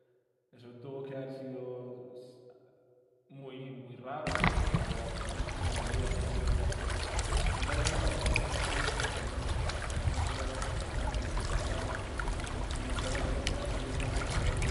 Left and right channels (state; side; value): identical; both; correlation 1.00